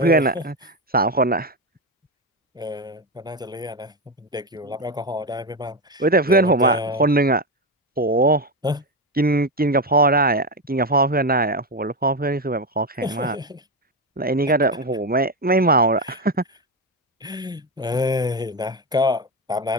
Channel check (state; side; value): normal; both; correlation 0.13